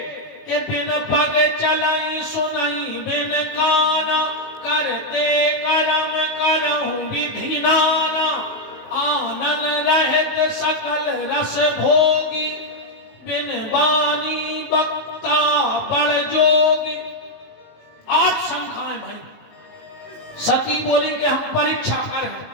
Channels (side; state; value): right; late; 19 ms